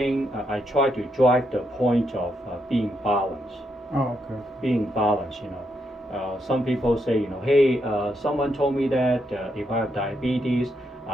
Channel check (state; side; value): normal; both; correlation 0.79